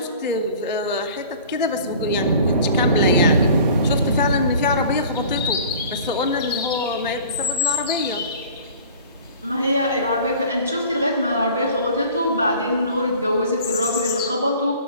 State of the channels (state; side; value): inverted; both; correlation -0.45